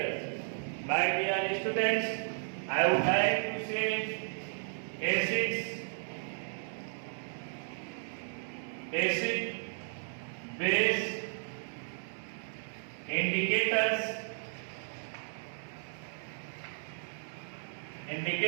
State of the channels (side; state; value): left; silent; digital silence